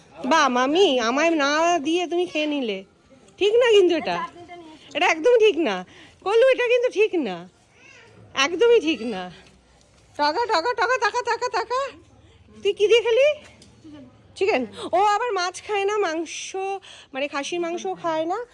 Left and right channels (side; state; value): both; identical; correlation 1.00